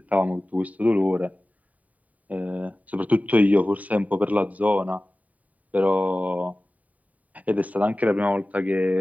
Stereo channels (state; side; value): late; left; 0.071 ms